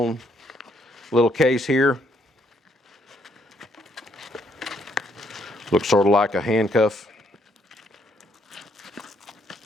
little case here. Looks sort of like a handcuff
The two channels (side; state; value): both; normal; correlation 0.71